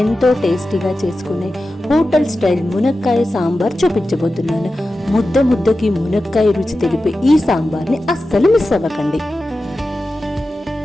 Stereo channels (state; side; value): normal; both; correlation 0.93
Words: ఎంతో టేస్టీగా చేసుకునే హోటల్ స్టైల్ మునక్కాయ సాంబార్ చూపించబోతున్నాను. ముద్దకి మునక్కాయ రుచి తెలిపే ఈ సాంబార్ని అస్సలు మిస్ అవ్వకండి.